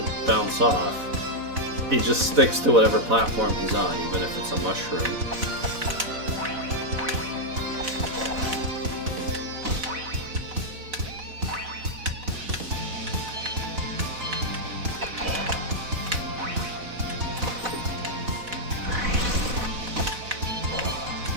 bounce off. He just sticks to whatever platform he's on, even if it's a mushroom.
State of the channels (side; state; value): left; late; 4.0 ms